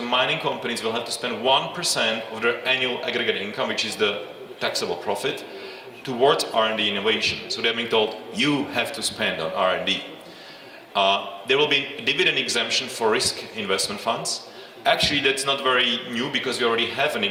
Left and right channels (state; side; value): identical; both; correlation 1.00